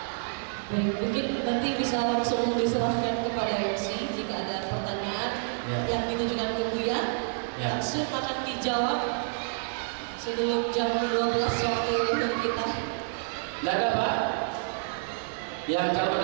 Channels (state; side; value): silent; left; digital silence